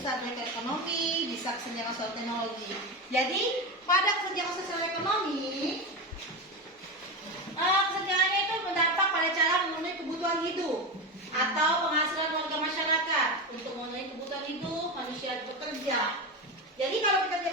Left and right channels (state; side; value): normal; both; correlation 0.18